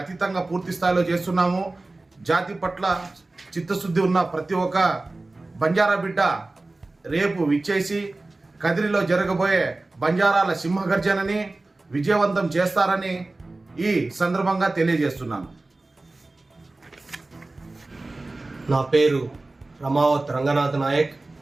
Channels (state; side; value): quieter; left; 3.1 dB